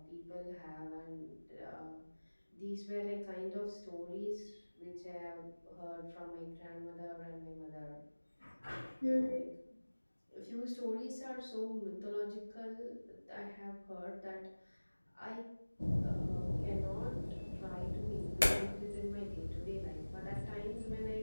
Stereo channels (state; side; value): inverted; both; correlation -1.00